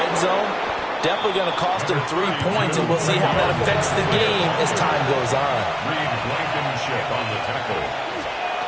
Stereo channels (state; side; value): identical; both; correlation 1.00